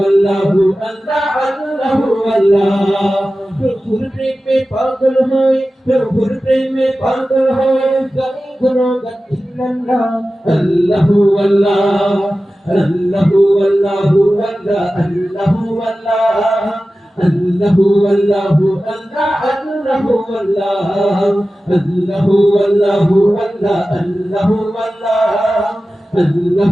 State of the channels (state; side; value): normal; both; correlation 0.95